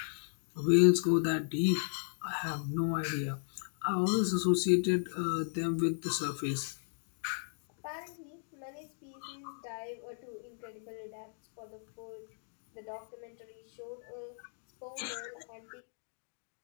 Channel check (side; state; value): right; silent; digital silence